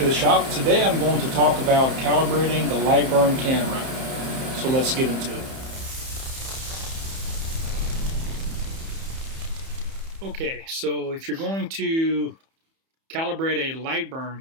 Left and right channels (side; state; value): left; late; 31 ms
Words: the shop. Today I'm going to talk about calibrating the Lightburn camera. So let's get into it. Okay, so if you're going to calibrate a